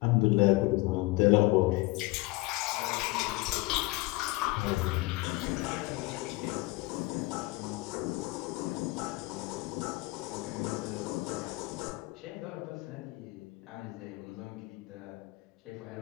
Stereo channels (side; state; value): right; quieter; 22.0 dB